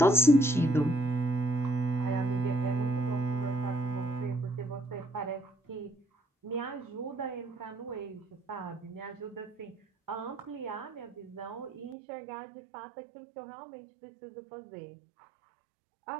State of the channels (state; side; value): drops out; left; at 12.0 s